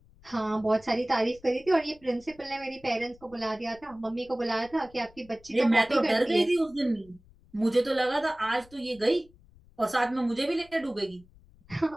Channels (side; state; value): left; noise; rumble, 27 dB below the sound